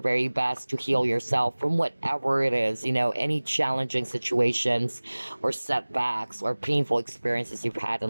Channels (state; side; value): inverted; both; correlation -1.00